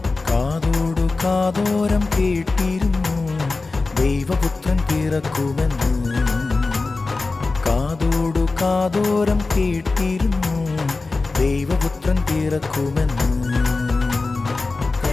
കാതോടു കാതോരം കേട്ടിരുന്നു ദൈവപുത്രൻ പിറക്കുമെന്ന്. കാതോടു കാതോരം കേട്ടിരുന്നു ദൈവപുത്രൻ പിറക്കുമെന്ന്.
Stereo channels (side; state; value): right; quieter; 3.7 dB